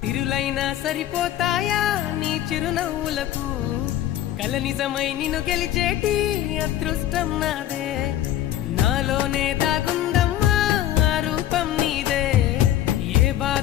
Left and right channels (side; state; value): right; quieter; 12.4 dB